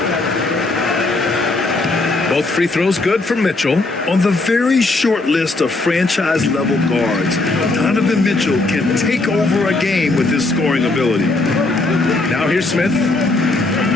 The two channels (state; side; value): quieter; right; 3.1 dB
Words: Both free throws good for Mitchell. On the very short list of franchise-level guards, Donovan Mitchell can take over a game with his scoring ability. Now here's Smith.